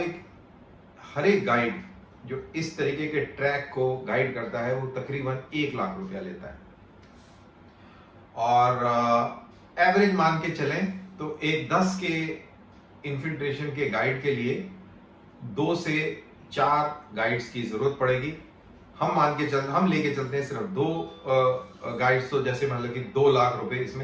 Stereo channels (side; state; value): both; identical; correlation 1.00